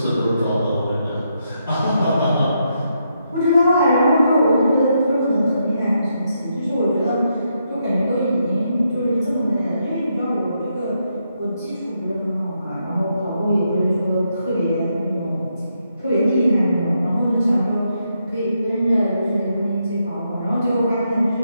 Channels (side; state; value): both; inverted; correlation -0.80